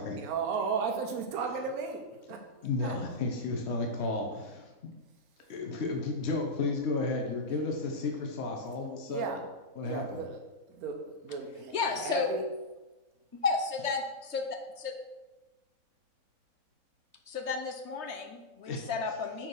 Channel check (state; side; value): late; left; 3.2 ms